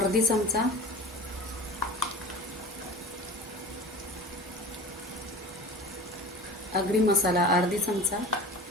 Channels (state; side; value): normal; both; correlation 0.37